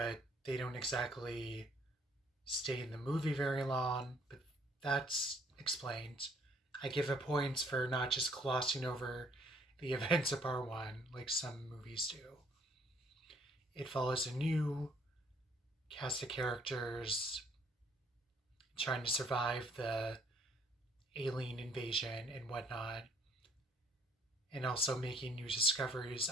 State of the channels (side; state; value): both; normal; correlation 0.62